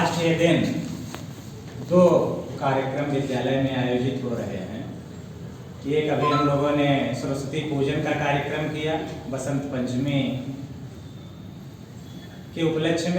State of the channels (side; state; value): both; identical; correlation 1.00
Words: के दिन दो कार्यक्रम विद्यालय में आयोजित हो रहे हैं। एक अभी हम लोगों ने सरस्वती पूजन का कार्यक्रम किया बसंत पंचमी के उपलक्ष्य